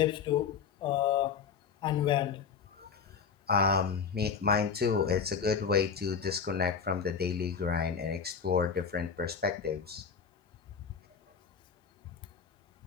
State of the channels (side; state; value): right; quieter; 6.3 dB